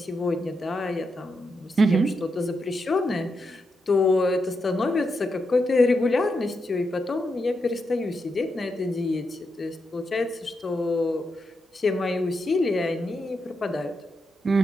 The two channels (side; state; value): both; normal; correlation 0.84